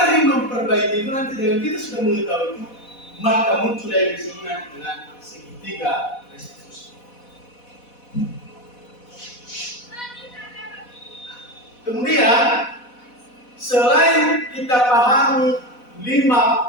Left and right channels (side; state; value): right; late; 4.1 ms